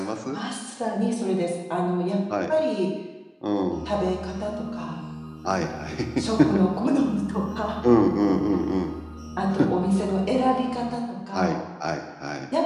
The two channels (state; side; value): identical; both; correlation 1.00